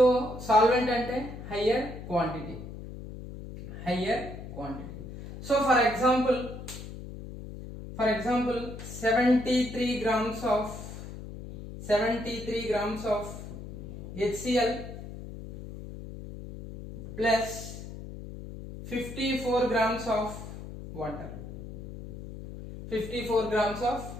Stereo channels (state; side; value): noise; left; hum, 11 dB below the sound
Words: సాల్వెంట్ అంటే higher quantity. So for example 73 grams of HCl plus 54 grams of water.